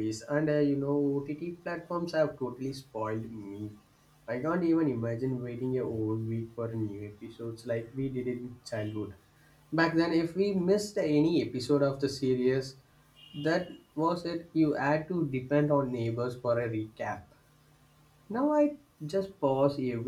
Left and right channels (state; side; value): identical; both; correlation 1.00